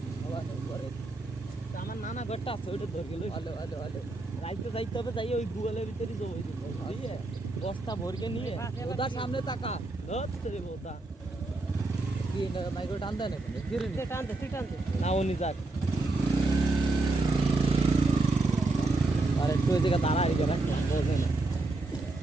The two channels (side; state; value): left; quieter; 3.1 dB